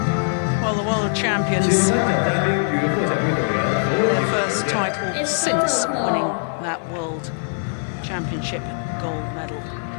Well, the world champions, their first title since winning that world championship gold medal.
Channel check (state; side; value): silent; right; 64 dB below the other